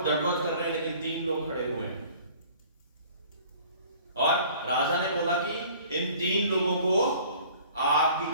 दंडवत कर रहे हैं, लेकिन 3 लोग खड़े हुए हैं। और राजा ने बोला कि इन 3 लोगों को आग की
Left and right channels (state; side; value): inverted; both; correlation -0.50